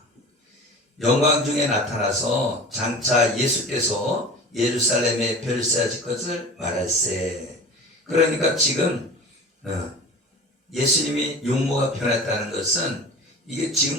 영광 중에 나타나서 장차 예수께서 예루살렘에 별세하실 것을 말할세. 그러니까 지금 예수님이 용모가 변했다는 것은 이게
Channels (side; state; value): both; normal; correlation 0.36